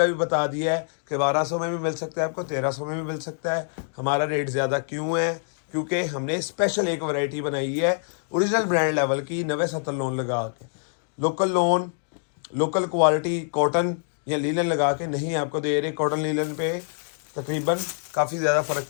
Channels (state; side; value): silent; right; digital silence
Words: भी बता दिया है कि 1200 में भी मिल सकता है, आपको 1300 में भी मिल सकता है। हमारा रेट ज़्यादा क्यों है? क्योंकि हमने स्पेशल एक वैरायटी बनाई है ओरिजिनल ब्रांड लेवल की 90-70 लोन लगा के, local loan, local quality cotton या लीलन लगा के नहीं आपको दे रहे। कॉटन लीलन पे तकरीबन काफ़ी ज़्यादा फ़र्क